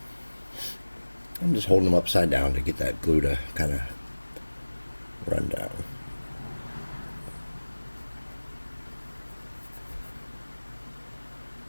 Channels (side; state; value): both; inverted; correlation -1.00